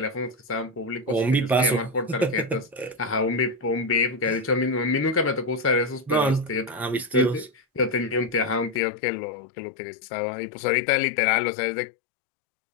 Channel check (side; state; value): right; drops out; at 8.8 s